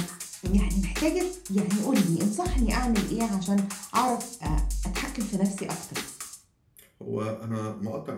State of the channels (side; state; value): both; identical; correlation 1.00